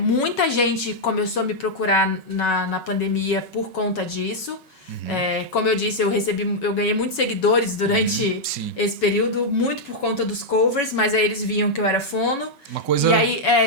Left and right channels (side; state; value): right; late; 5.3 ms